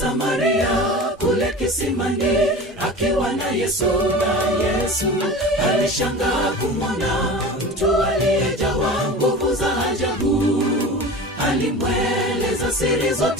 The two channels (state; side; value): normal; both; correlation 0.34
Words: kule kisimani, akiwa na Yesu alishangaa kumwona mtu aliyejawa nguvu za ajabu. Alimweleza siri